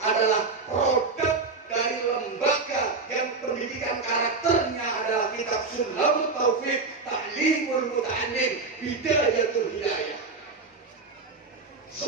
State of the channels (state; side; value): quieter; left; 4.1 dB